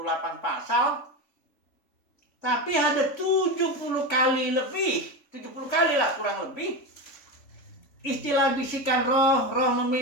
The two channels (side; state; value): right; late; 3.5 ms